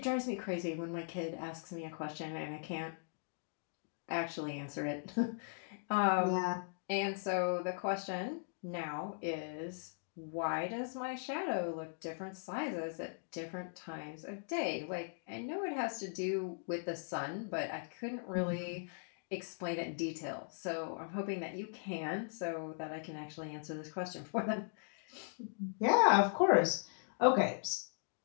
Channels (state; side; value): silent; right; digital silence